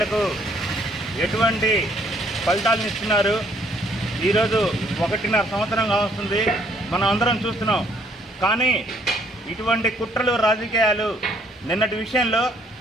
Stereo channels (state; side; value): normal; both; correlation 0.66